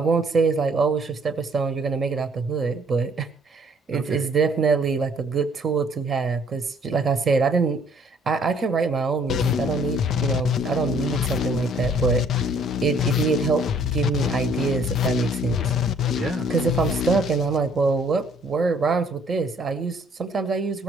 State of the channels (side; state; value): both; normal; correlation 0.60